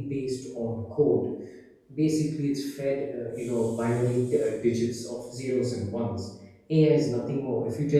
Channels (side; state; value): both; identical; correlation 1.00